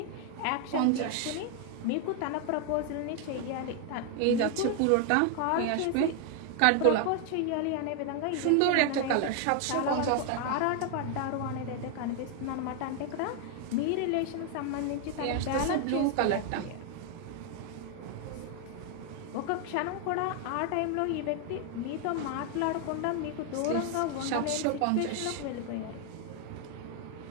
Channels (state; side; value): different; both; correlation 0.00